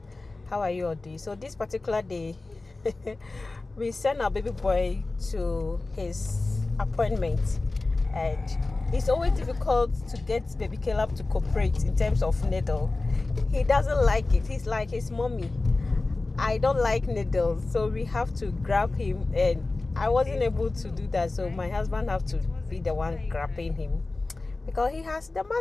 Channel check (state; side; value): quieter; right; 3.3 dB